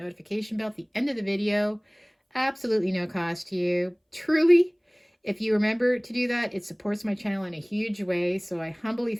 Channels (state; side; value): identical; both; correlation 1.00